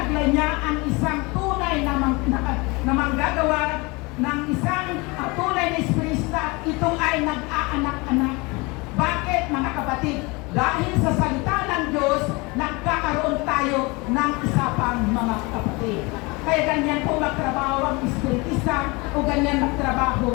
niya ang isang tunay na manggagawa ng isang tunay na espiritista, ito ay nag-aanak-anak. Bakit, mga kapatid? Dahil sa salita ng Diyos, nagkakaroon tayo ng isa pang mga kapatid. Kaya ganyan po magtrabaho ang espiritista o ganyan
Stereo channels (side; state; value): right; quieter; 26.1 dB